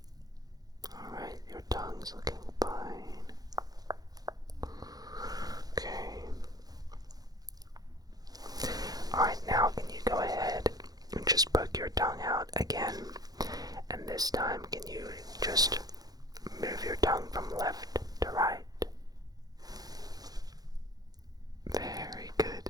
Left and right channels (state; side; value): late; left; 0.19 ms